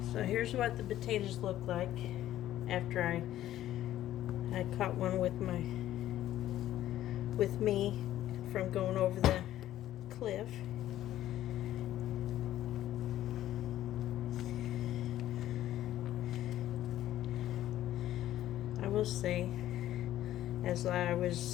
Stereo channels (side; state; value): right; quieter; 13.2 dB